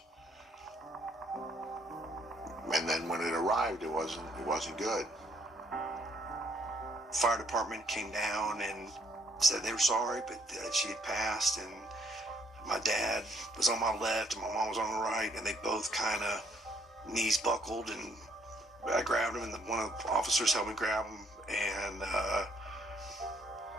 And then when it arrived, it wasn't good. Fire department came down and said they were sorry, but she had passed, and my dad was on my left and my mom was on the right, and they both kind of knees buckled, and I grabbed him, and one of the officers helped me grab him, and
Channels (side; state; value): both; normal; correlation 0.67